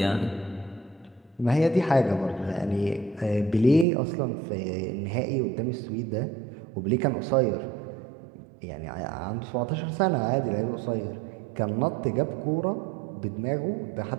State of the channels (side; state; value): left; drops out; at 3.9 s